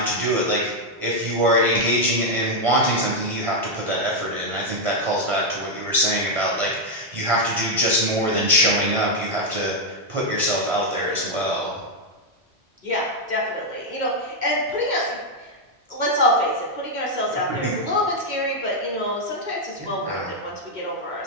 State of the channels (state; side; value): normal; both; correlation 0.00